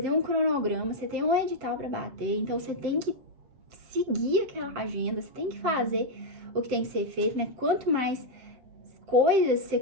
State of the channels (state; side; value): late; left; 8.2 ms